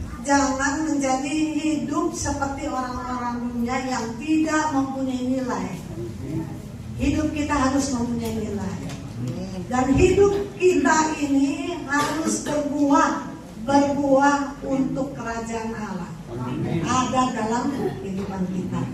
jangan menjadi hidup seperti orang-orang dunia yang tidak mempunyai nilai. Hidup kita harus mempunyai nilai. Dan hidup kita ini harus berbuah untuk kerajaan Allah. Ada dalam kehidupan kita.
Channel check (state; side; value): identical; both; correlation 1.00